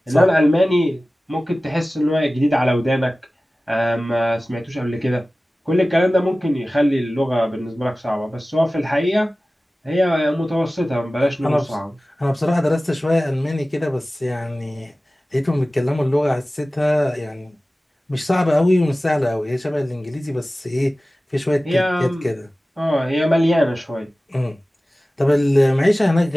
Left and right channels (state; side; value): normal; both; correlation 0.97